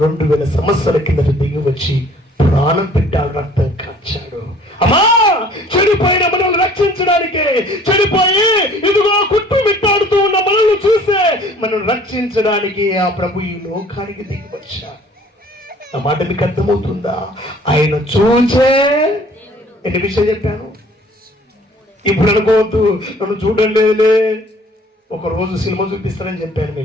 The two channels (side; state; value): both; normal; correlation 0.54